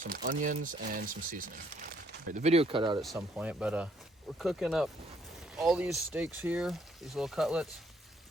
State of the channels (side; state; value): both; normal; correlation 0.67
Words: onions, and some seasoning. Right, the video cut out at some point, but we're cooking up all these steaks here, these little cutlets.